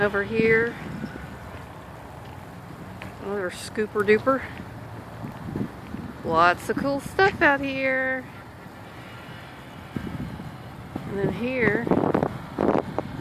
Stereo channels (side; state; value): both; identical; correlation 1.00